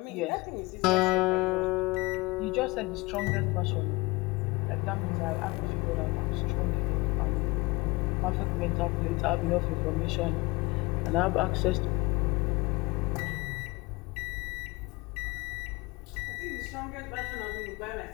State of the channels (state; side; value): quieter; right; 23.9 dB